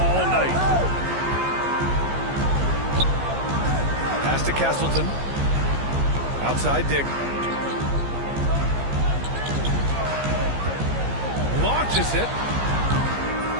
night. Pass to Castleton. Outside Dick. Launches it.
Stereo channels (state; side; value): late; left; 15 ms